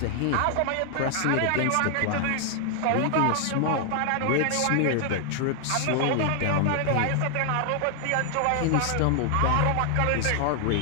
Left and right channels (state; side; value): different; both; correlation 0.00